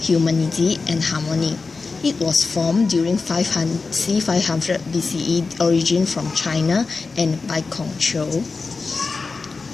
and harmony. It was formed during c. 500 BCE, origin from China and by Kongqiu.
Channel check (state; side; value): quieter; right; 4.2 dB